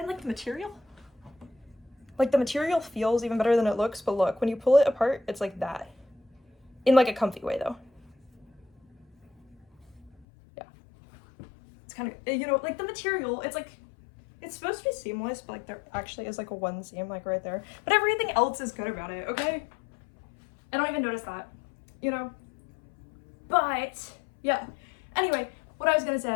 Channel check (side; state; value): right; drops out; at 10.2 s